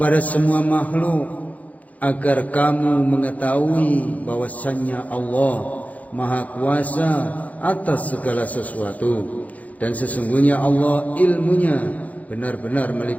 semua makhluk agar kamu mengetahui bahwasannya Allah Maha Kuasa atas segala sesuatu, dan sesungguhnya Allah ilmunya benar-benar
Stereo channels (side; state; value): right; late; 0.072 ms